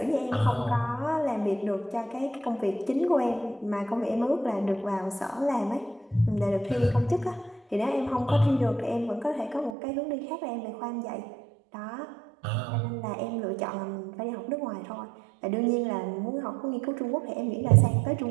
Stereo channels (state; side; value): drops out; left; at 9.7 s